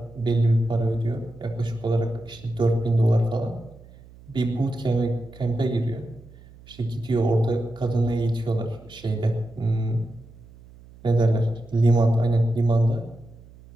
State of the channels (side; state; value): right; noise; hum, 22 dB below the sound